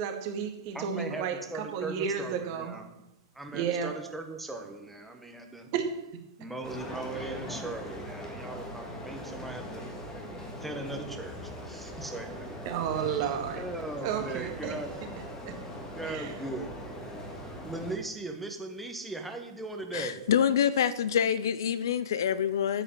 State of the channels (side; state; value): both; normal; correlation -0.19